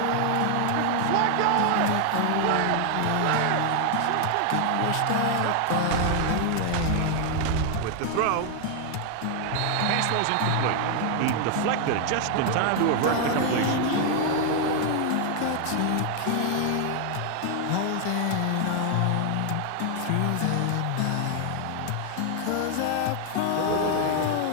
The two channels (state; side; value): different; both; correlation 0.00